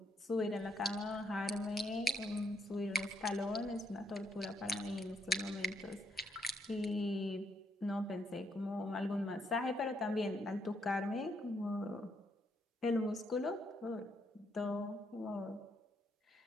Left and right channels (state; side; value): normal; both; correlation 0.75